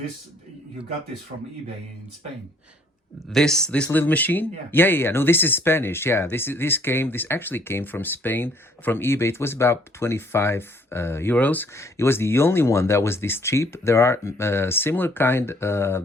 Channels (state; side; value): normal; both; correlation 0.62